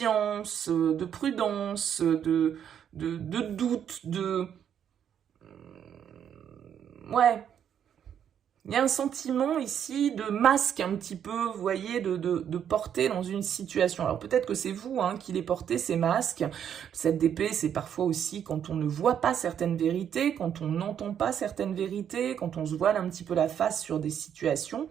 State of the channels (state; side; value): quieter; left; 8.9 dB